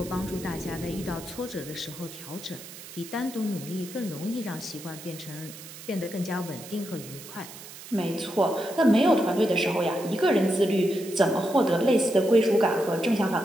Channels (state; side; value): noise; right; hiss, 15 dB below the sound